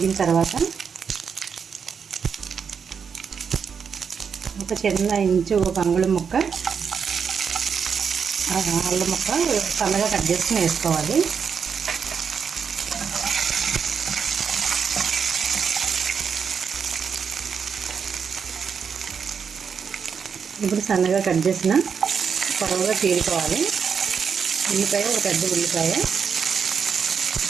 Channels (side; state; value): left; quieter; 6.6 dB